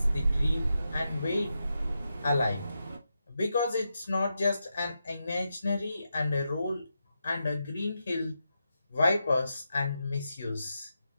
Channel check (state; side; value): inverted; both; correlation -0.87